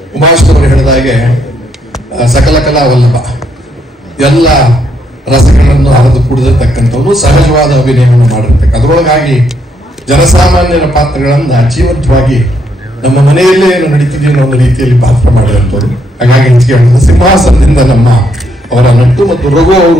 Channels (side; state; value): both; normal; correlation 0.74